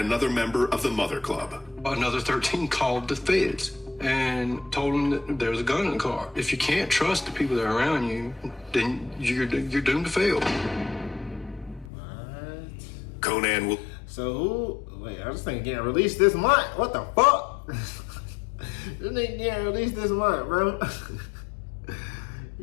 member of the Mother Club. Another 13 called the feds and told them that there was a gun in the car. If you can't trust the people that are around you, then you're doomed to fail. What? Conan will... So who... Wait, I was thinking getting released this month. What the fuck? This nigga getting released this month, bro.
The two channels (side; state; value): right; drops out; at 11.9 s